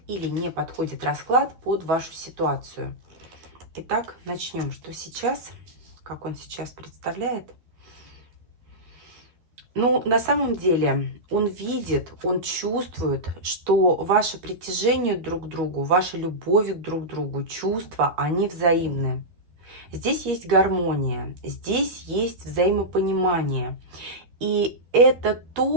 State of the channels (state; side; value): late; left; 12 ms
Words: или не подходит расклад под вашу ситуацию. Итак, начнем. Что сейчас? Как он сейчас представляет? Ну, на самом деле, он видит, он чувствует, что ваше притяжение друг к другу, ваша любовь друг к другу, чувства, они взаимны. Здесь есть гармония, здесь есть взаимопонимание. И это